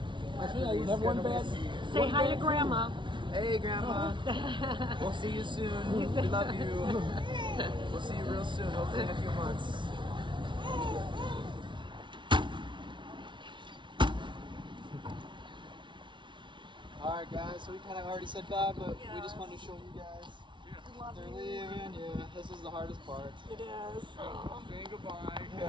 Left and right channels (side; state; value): left; late; 0.24 ms